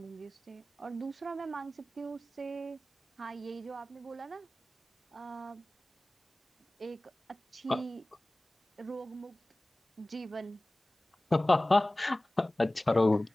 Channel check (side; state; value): both; normal; correlation 0.98